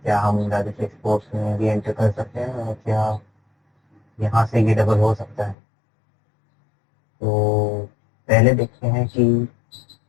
क्या हम राजस्व एक्सपोर्ट्स में भी एंटर कर सकते हैं और क्या यहाँ से ये डबल हो सकता है। तो पहले देखते हैं कि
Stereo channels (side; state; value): right; drops out; at 5.6 s